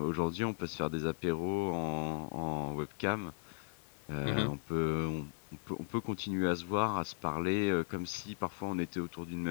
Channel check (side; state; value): right; silent; digital silence